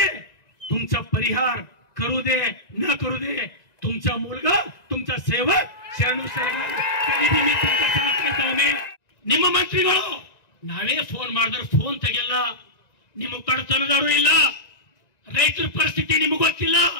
तुमचा परिहार करू दे न करू दे, तुमचा मुलगा, तुमचा सेवक शरणू सरकार कधी मी तुमचा साथ करतावे. ನಿಮ್ಮ ಮಂತ್ರಿಗಳು ನಾವೇ ಫೋನ್ ಮಾಡಿದ್ರೆ ಫೋನ್ ತೆಗೆಲ್ಲ. ನಿಮ್ಮ ಕಡತನದಾರು ಇಲ್ಲ. ರೈತರ ಪರಿಸ್ಥಿತಿ ನಿಮಗೆ ಗೊತ್ತಿಲ್ಲ.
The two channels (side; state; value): right; late; 1.9 ms